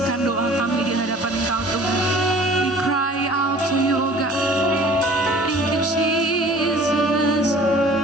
doa kami di hadapan Engkau Tuhan. We cry out to you, oh God. Thank you, Jesus.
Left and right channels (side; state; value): both; normal; correlation 0.48